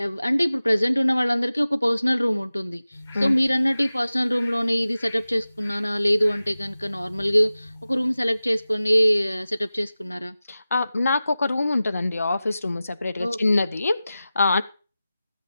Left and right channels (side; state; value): both; inverted; correlation -0.96